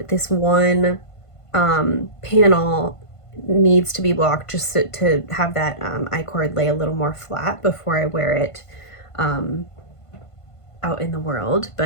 this one panel needs to be blocked just to have that I-cord lay a little more flat before I wear it out in the world.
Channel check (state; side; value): late; right; 1.5 ms